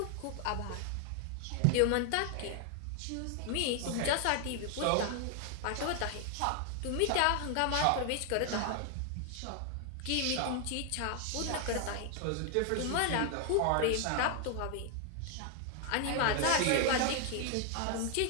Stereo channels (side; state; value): both; different; correlation 0.00